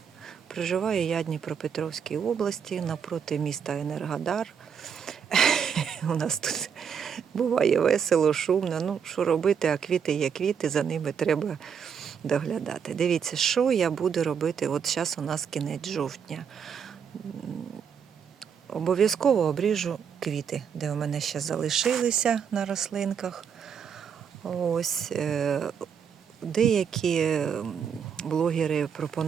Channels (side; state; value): left; quieter; 7.2 dB